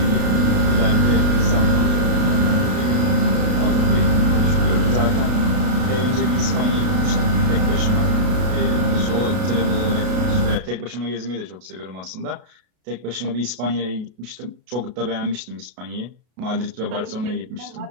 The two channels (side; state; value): left; late; 33 ms